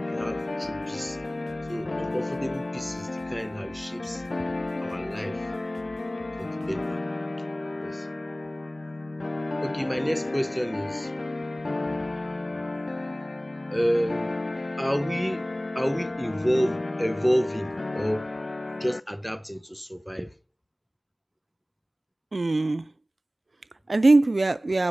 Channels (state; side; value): normal; both; correlation 0.98